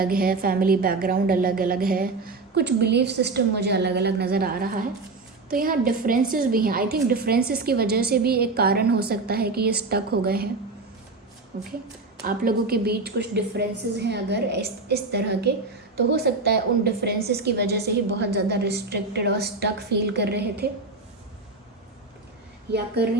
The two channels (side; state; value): left; quieter; 3.7 dB